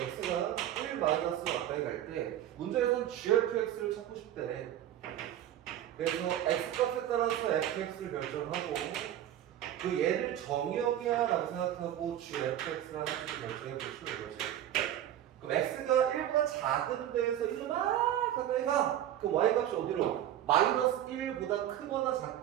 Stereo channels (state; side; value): quieter; left; 11.6 dB